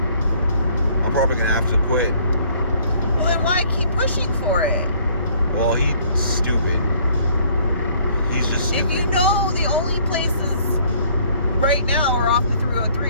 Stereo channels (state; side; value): inverted; both; correlation -0.60